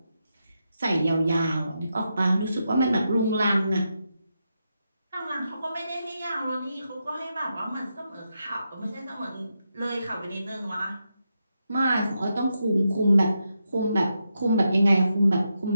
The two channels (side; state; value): both; inverted; correlation -0.85